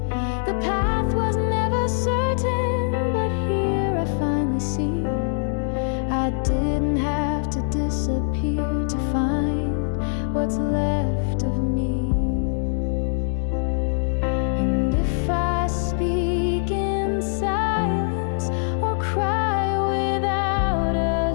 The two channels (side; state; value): right; silent; digital silence